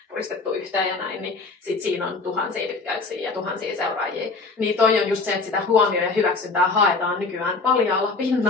puristettu yhteen ja näin, niin sit siinä on tuhansia tykkäyksiä ja tuhansia seuraajia. Niin toi on just se, että sitä huomioon ja hyväksyntää haetaan nykyään paljaalla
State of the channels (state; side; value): quieter; right; 3.9 dB